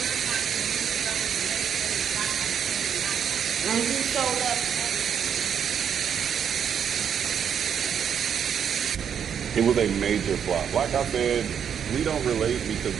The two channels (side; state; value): left; quieter; 8.1 dB